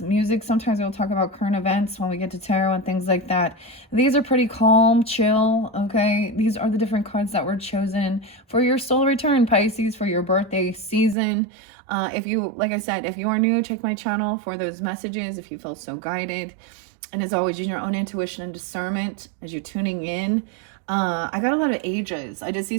music. Sometimes we'll talk about current events when we get to tarot and things like that. These are pretty calm, chill, okay? These are the different cards that were chosen for your solar return, Pisces, for your birthday season. If you, like I said, if you are new, check my channel for those messages if you feel so guided. And as always, use your own intuition and discernment as you're tuning in. I got a lot of ages. I did see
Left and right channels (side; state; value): left; drops out; at 11.2 s